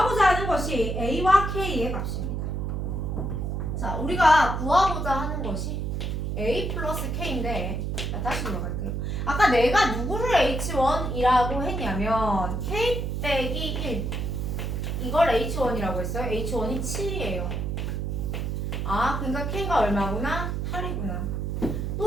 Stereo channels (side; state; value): right; noise; hum, 2 dB below the sound